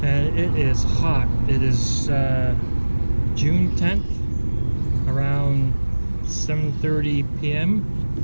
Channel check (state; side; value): inverted; both; correlation -1.00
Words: And it is hot. It is June 10th, around 7:30 p.m.